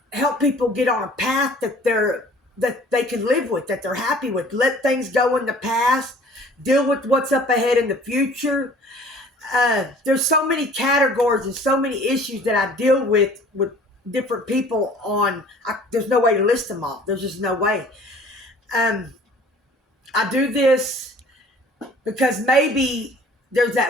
help people get on a path that they can live with, that they're happy with. Let things go in the past, deal with what's up ahead in the future. There's so many categories and so many issues that I deal with different people on. There's no way to list them all. There's just no way. I do this because maybe there's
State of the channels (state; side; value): normal; both; correlation 0.51